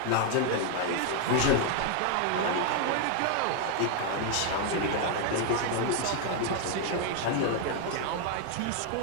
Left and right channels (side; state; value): both; different; correlation 0.00